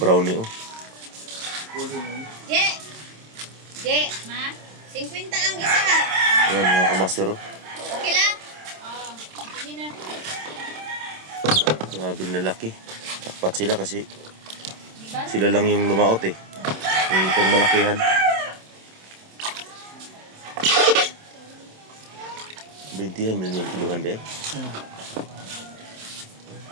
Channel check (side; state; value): left; late; 27 ms